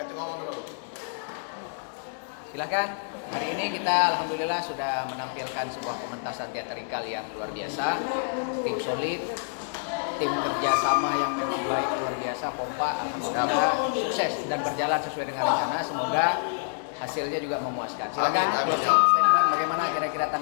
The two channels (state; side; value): silent; right; digital silence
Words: cuma ngomong dulu. Silakan. Hari ini kita alhamdulillah sudah menampilkan sebuah pementasan teatrikal yang luar biasa. Tim solid, tim kerjasama yang memang baik luar biasa, pompa, alhamdulillah sukses dan berjalan sesuai dengan rencana. Semoga hasilnya juga memuaskan. Silakan. Amin, amin. Closing statement bagaimana kira-kira